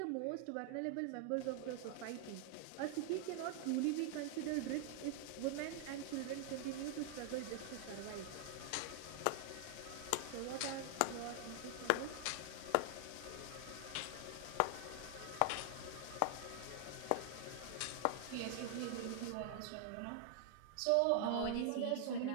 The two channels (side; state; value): both; different; correlation 0.00